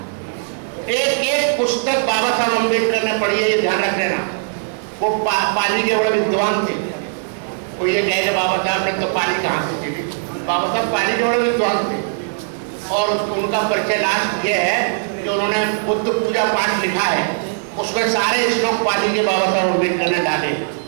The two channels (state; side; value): silent; left; digital silence